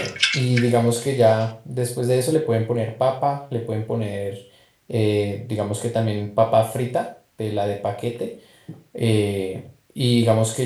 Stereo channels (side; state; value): both; identical; correlation 1.00